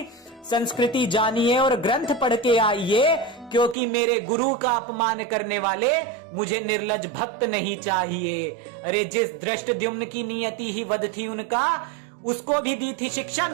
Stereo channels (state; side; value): drops out; left; at 3.8 s